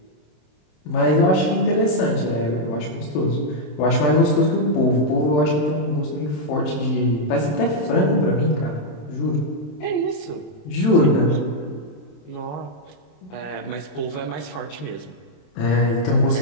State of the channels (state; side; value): late; right; 27 ms